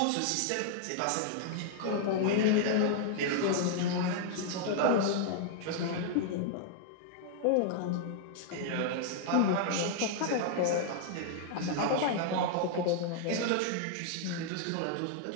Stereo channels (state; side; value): different; both; correlation 0.00